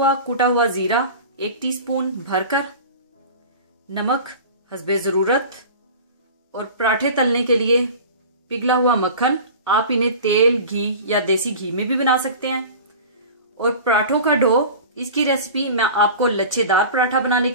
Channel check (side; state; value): both; inverted; correlation -0.37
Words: कुटा हुआ जीरा 1 टीस्पून भरकर, नमक हस्बे जरूरत, और पराठे तलने के लिए पिघला हुआ मक्खन। आप इन्हें तेल, घी या देसी घी में भी बना सकते हैं। और पराठों का डो, इसकी रेसिपी मैं आपको लच्छेदार पराठा बनाने